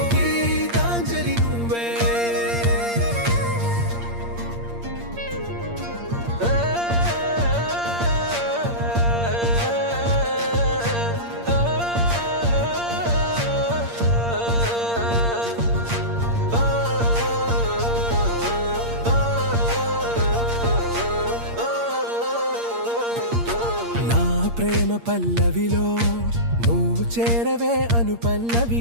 గీతాంజలి నువ్వే ప్రేమ పల్లవిలో నువ్వు చేరవే అను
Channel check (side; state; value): left; late; 8.6 ms